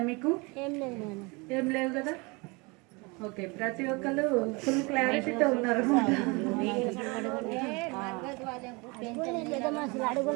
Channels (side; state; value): left; quieter; 27.6 dB